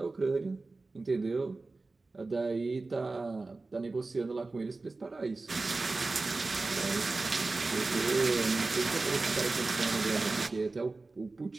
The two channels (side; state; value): left; quieter; 3.5 dB